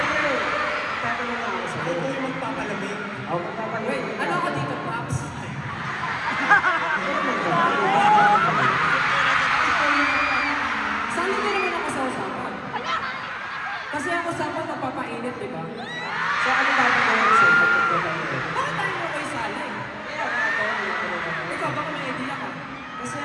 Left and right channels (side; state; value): both; identical; correlation 1.00